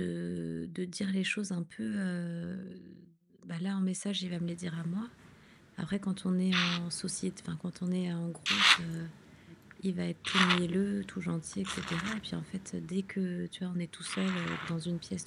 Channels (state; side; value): identical; both; correlation 1.00